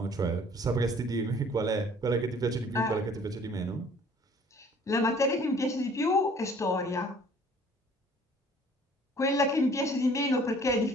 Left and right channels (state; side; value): normal; both; correlation 0.54